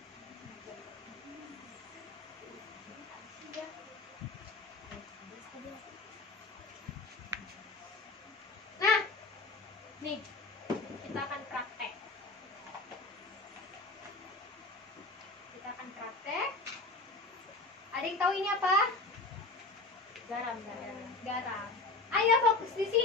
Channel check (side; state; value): right; quieter; 3.3 dB